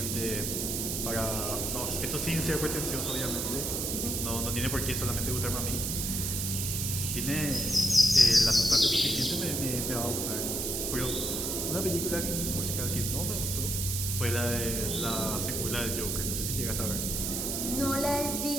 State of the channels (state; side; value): noise; right; hiss, 1 dB below the sound